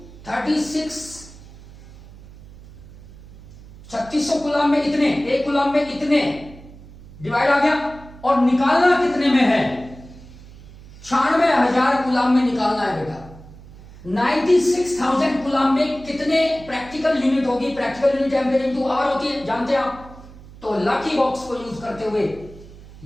36। 3600 coulomb में इतने, 1 कूलाम में इतने, डिवाइड आ गया। और निकालना कितने में है, 96,000 कूलाम में निकालना है बेटा। 96,000 कूलाम में कितने प्रैक्टिकल यूनिट होगी। Practical unit ampere into hour होती है, जानते हैं आप। तो लकी बॉक्स को यूज करते हुए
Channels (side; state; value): right; noise; hum, 19 dB below the sound